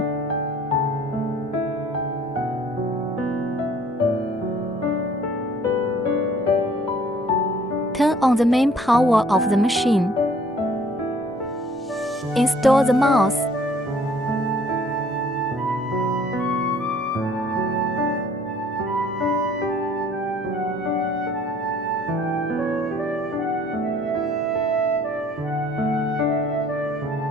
Turn on the main power of the machine. Install the mouse.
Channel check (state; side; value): normal; both; correlation 0.56